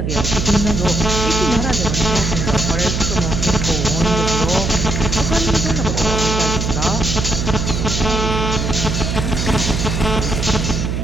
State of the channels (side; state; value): right; noise; hum, 1 dB below the sound